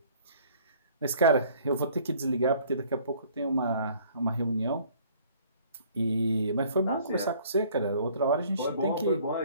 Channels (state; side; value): inverted; both; correlation -0.56